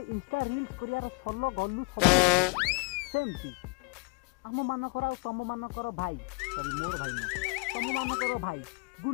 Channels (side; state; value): right; quieter; 30.3 dB